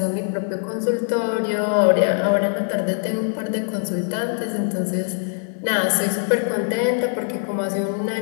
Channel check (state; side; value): silent; right; 64 dB below the other